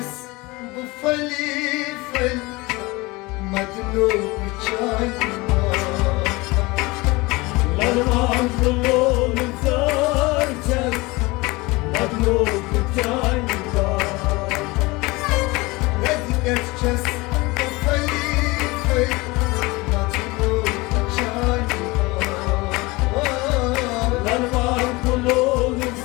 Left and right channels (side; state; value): right; quieter; 23.2 dB